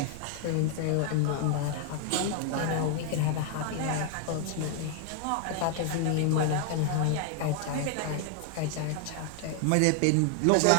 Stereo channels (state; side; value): different; both; correlation 0.00